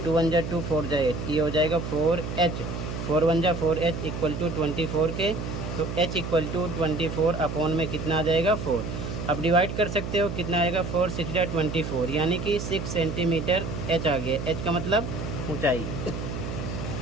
2 1 जा 2, 4 जा 8, ये हो जाएगा 4h, 4 1 जा 4h इक्वल टू 24 के। तो h इक्वल टू 24 अपॉन में कितना आ जाएगा? 4। अब डिवाइड कर सकते हो, कितना आएगा? 4 6 जा 24, यानी कि 6 सेंटीमीटर h आ गया। h का मतलब ऊंचाई।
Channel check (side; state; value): right; noise; hum, 5 dB below the sound